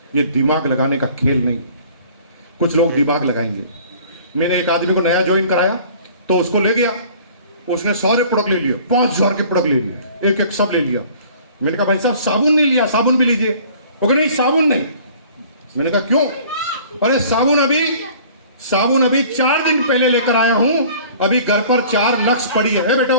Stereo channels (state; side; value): inverted; both; correlation -0.50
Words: ये दिमाग लगाने का खेल नहीं। कुछ लोग दिमाग लगाएंगे। मैंने एक आदमी को नया ज्वाइन कराया तो उसको ले गया, उसने सारे प्रोडक्ट ले लिए, 5000 के प्रोडक्ट ले लिए, एक एक सब ले लिया। मैंने कहा भाई साहब साबुन नहीं लिया, साबुन भी लीजिए। वो कहा नहीं साबुन नहीं। मैंने कहा क्यों? अरे साबुन अभी 4 दिन पहले लेकर आया हूं, अभी घर पर 4 लक्स पड़ी है।